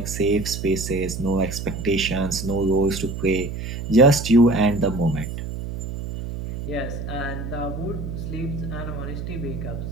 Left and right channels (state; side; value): noise; right; hum, 6 dB below the sound